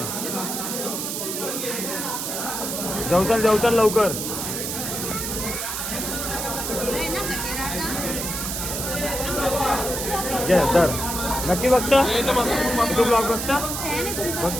जाऊ चल लवकर. घे तर. नक्की बघता तू ब्लॉग बघता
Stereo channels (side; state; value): right; noise; hiss, 3 dB below the sound